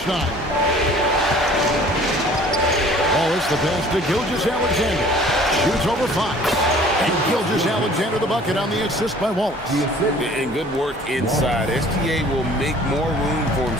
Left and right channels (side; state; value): both; normal; correlation 0.52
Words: Wallace the pass to Gilgeous-Alexander. Shoots over Fox. And Gilgeous-Alexander the bucket on the assist by Wallace. And good work inside. SGA will make more room for